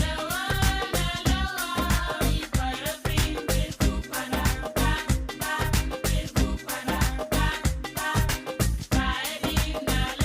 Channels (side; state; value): both; identical; correlation 1.00